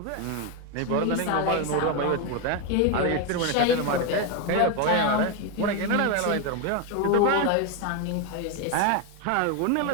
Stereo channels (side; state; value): both; different; correlation 0.02